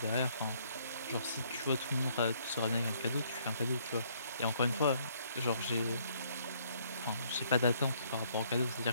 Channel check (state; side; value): inverted; both; correlation -0.66